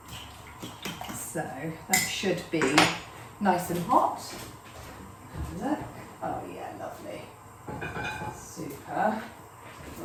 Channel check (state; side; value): identical; both; correlation 1.00